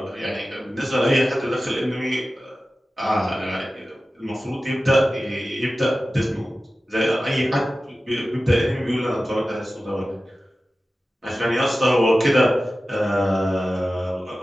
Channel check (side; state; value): both; normal; correlation 0.95